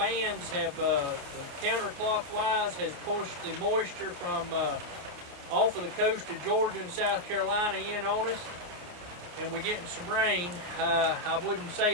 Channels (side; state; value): left; late; 28 ms